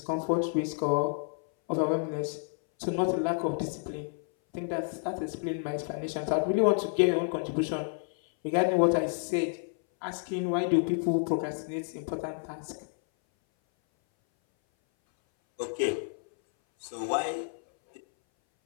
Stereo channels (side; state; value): right; silent; 58 dB below the other